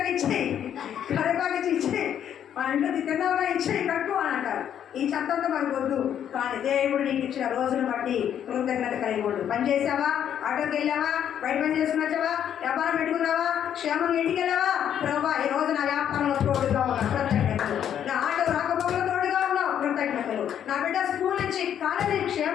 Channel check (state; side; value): quieter; right; 9.5 dB